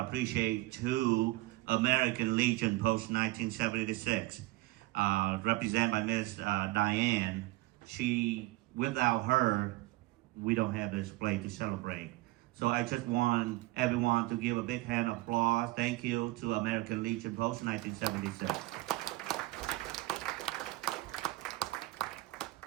to American Legion Post 1976, represented by Ms. Diane. Without her, we don't have this play to celebrate. So I just want everyone to give a big hand of applause. Thank you to American Legion Post 1976.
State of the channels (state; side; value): quieter; left; 19.9 dB